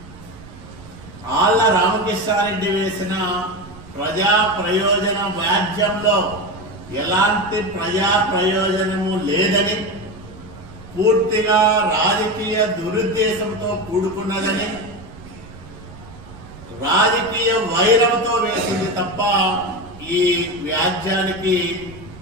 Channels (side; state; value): right; noise; rumble, 18 dB below the sound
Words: ఆళ్ల రామకృష్ణారెడ్డి వేసిన ప్రజా ప్రయోజన వ్యాజ్యంలో ఎలాంటి ప్రజా ప్రయోజనము లేదని, పూర్తిగా రాజకీయ దురుద్దేశంతో కూడుకున్నదని, రాజకీయ వైరంతో వేసింది తప్ప ఈ వ్యాజ్యానికి